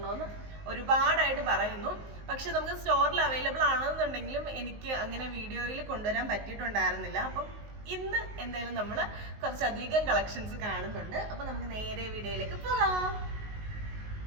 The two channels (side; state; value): left; late; 19 ms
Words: ഒരുപാടായിട്ട് പറയുന്നു. പക്ഷെ നമുക്ക് സ്റ്റോറിൽ അവൈലബിൾ ആണെന്നുണ്ടെങ്കിലും എനിക്ക് അങ്ങനെ വീഡിയോയിൽ കൊണ്ടുവരാൻ പറ്റിയിട്ടുണ്ടായിരുന്നില്ല. അപ്പം ഇന്ന് എന്തായാലും നമ്മൾ കുറച്ചധികം കളക്ഷൻസ് കാണുന്നുണ്ട്. അപ്പൊ നമുക്ക് നേരെ വീഡിയോയിലേക്ക് പോകാം.